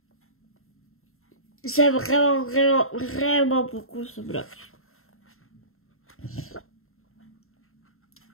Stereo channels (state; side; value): late; right; 0.62 ms